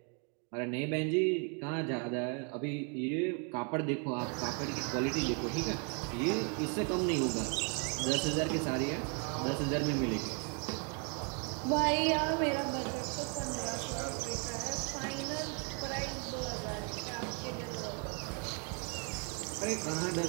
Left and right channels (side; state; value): left; quieter; 38.5 dB